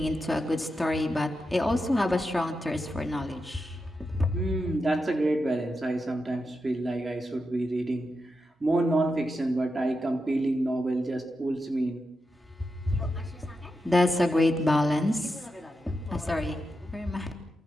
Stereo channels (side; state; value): both; normal; correlation 0.88